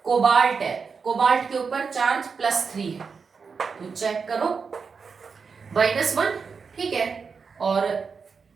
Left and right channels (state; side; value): quieter; left; 5.4 dB